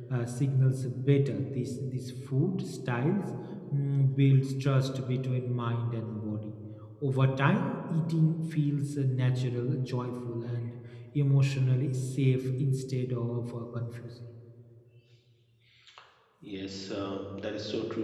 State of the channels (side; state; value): both; identical; correlation 1.00